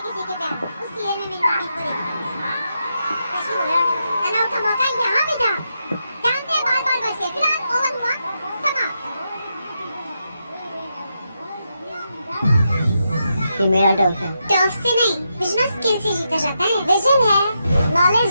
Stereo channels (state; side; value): inverted; both; correlation -0.84